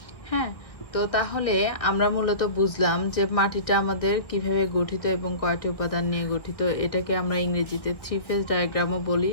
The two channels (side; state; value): right; late; 1.8 ms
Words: হ্যাঁ, তো তাহলে আমরা মূলত বুঝলাম যে মাটিটা আমাদের কিভাবে গঠিত এবং কয়টি উপাদান নিয়ে গঠিত। এটাকে আমরা ইংরেজিতে থ্রি ফেজ ডায়াগ্রামও বলি,